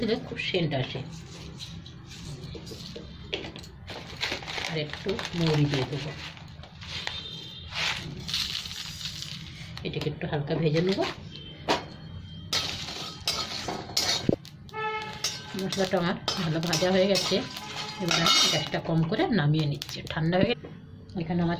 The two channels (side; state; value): both; identical; correlation 1.00